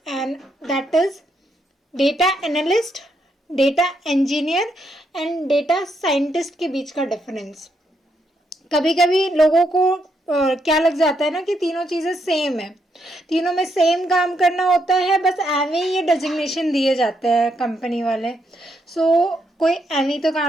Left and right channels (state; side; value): normal; both; correlation 0.78